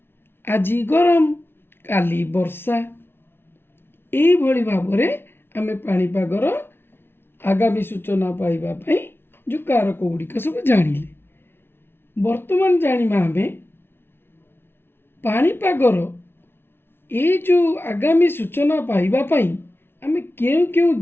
ଆଜି ଗରମ, କାଲି ବର୍ଷା। ଏଇଭଳି ଭାବରେ ଆମେ ପାଣିପାଗର ଆଗାମୀ ସୂଚନା ପାଇବା ପାଇଁ ଯେଉଁ କାରକ ଗୁଡ଼ିକ ସବୁ ଜାଣିଲେ। ବର୍ତ୍ତମାନ ଜାଣିବା ଆମେ ପାଣିପାଗର ଏଇ ଯେଉଁ ଆଗାମୀ ସୂଚନା ପାଇବା ପାଇଁ ଆମେ କେଉଁ କେଉଁ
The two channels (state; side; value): late; right; 0.11 ms